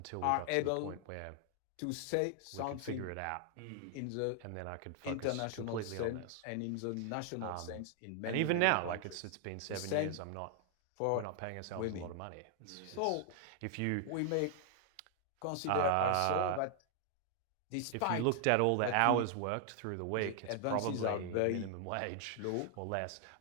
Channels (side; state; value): both; different; correlation 0.00